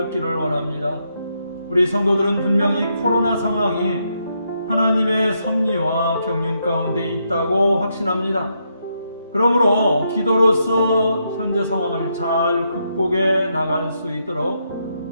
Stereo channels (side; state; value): both; inverted; correlation -0.79